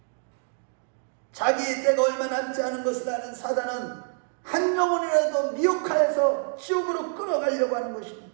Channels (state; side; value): silent; left; digital silence